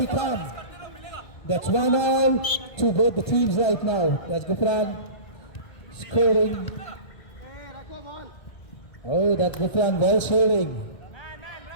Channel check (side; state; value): right; late; 1.3 ms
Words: calm. That's 1-1 to both the teams right now. That's Gufran scoring. Oh, that's Gufran well shielding.